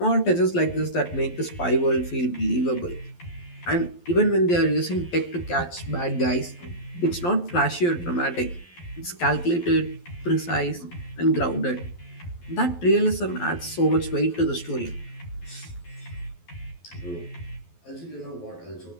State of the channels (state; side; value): late; right; 12 ms